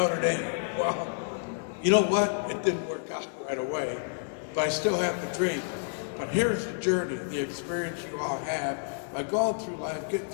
Dame. Well, you know what? It didn't work out right away, but I still have the dream. But here's the journey, the experience you all have by going through life, getting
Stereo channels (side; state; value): right; silent; digital silence